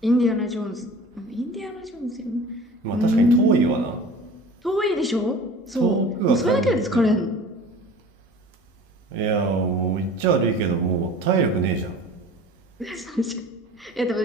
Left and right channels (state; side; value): normal; both; correlation 0.41